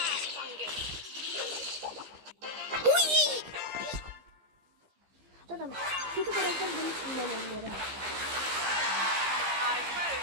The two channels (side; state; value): left; late; 15 ms